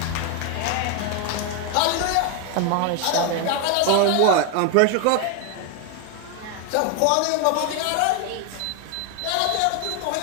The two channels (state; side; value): different; both; correlation 0.01